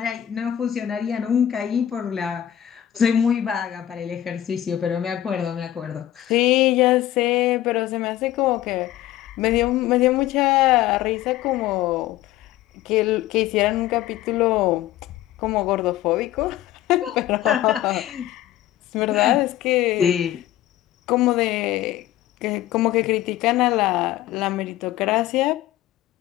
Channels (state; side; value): quieter; right; 13.1 dB